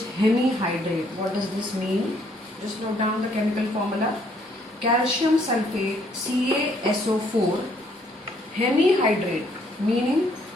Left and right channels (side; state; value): both; normal; correlation 0.67